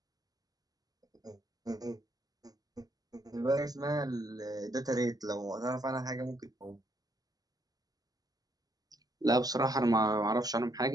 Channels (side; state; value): left; late; 0.18 ms